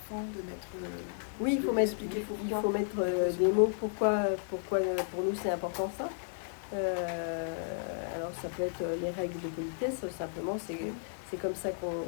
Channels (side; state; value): right; silent; digital silence